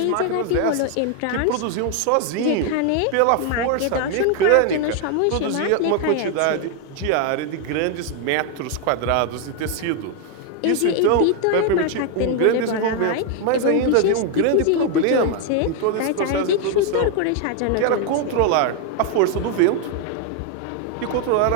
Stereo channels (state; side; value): different; both; correlation 0.00